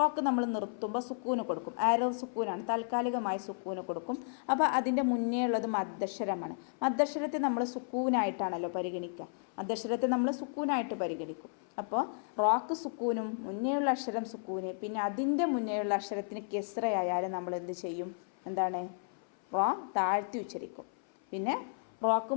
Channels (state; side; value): silent; right; 56 dB below the other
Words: നമ്മൾ നിർത്തുമ്പോൾ സുക്കൂന് കൊടുക്കും, ആരോ സുക്കൂനാണ്, താൽക്കാലികമായി സുക്കൂന് കൊടുക്കും. അപ്പോൾ അതിൻ്റെ മുന്നേ ഉള്ളത് മദ്ദക്ഷരമാണ്. മദ്ദക്ഷരത്തെ നമ്മൾ സുക്കൂനായിട്ടാണല്ലോ പരിഗണിക്കുക, മദ്ദക്ഷരത്തെ നമ്മൾ സുക്കൂനായിട്ട് പരിഗണിക്കും. അപ്പോൾ റോക്ക് സുക്കൂനും മുന്നേയുള്ള അക്ഷരം സുക്കൂന്, പിന്നെ അതിൻ്റെ മുന്നേയുള്ള അക്ഷരത്തിന് കെസ്രയായാലും നമ്മൾ എന്ത് ചെയ്യും, എന്താണ്, റോ താഴ്ത്തി ഉച്ചരിക്കും. പിന്നെ റോക്ക്